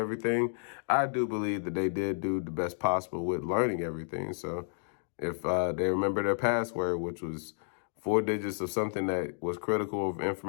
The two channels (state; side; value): silent; right; digital silence